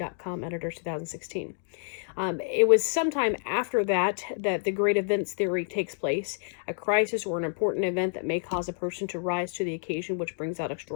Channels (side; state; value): right; silent; digital silence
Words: editors 2016. It was sometime after that the great events theory takes place, a crisis or an important event that may cause a person to rise to the occasion, which brings out